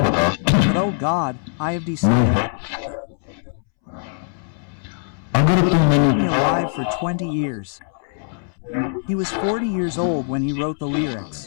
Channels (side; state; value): right; silent; 65 dB below the other